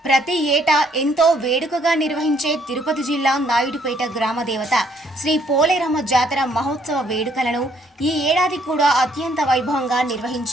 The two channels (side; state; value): both; normal; correlation 0.67